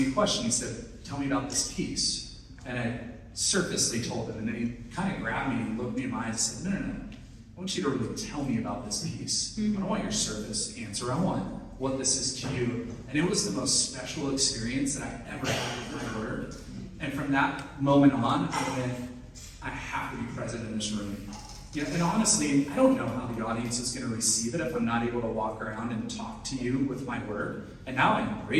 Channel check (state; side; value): identical; both; correlation 1.00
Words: a question. He said, "Tell me about this piece." And I surfacely told him. And then he kind of grabbed me and looked me in my eyes and said, "No. I want you to really tell me about this piece. I don't want your surface answer. I want what this is to you." And it was the most special experience that I ever had with my work. And from that moment on, I went, I have to be present in this room. Yeah, and honestly, I don't know how the audience is going to receive it if I'm not able to walk around and talk to you with my work. And now I